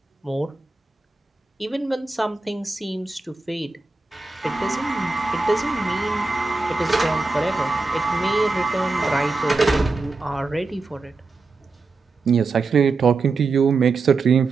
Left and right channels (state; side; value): quieter; left; 3.7 dB